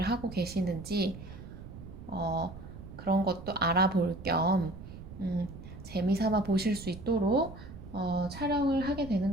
하고 계시는지 어, 그런 것도 알아볼 겸 재미삼아 보실 수 있도록 촬영을 하게 되는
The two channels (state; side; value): noise; right; rumble, 13 dB below the sound